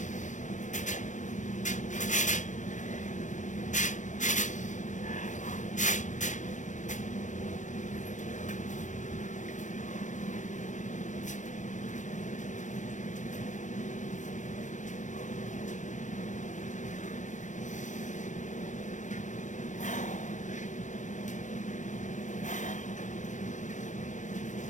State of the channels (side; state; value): right; late; 0.36 ms